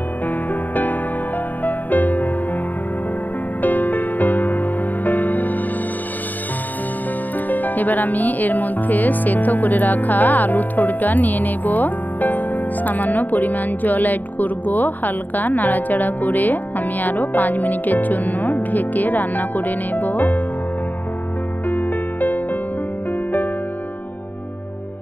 এবার আমি এর মধ্যে সেদ্ধ করে রাখা আলু থোড়টা নিয়ে নেব। সামান্য পরিমাণ জল অ্যাড করব। হালকা নাড়াচাড়া করে আমি আরও 5 মিনিটের জন্য ঢেকে রান্না করে নেব।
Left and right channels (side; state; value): right; late; 0.085 ms